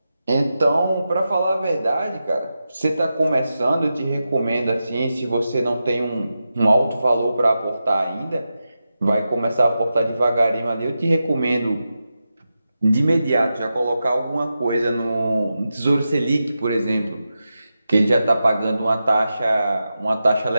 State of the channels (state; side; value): inverted; both; correlation -0.90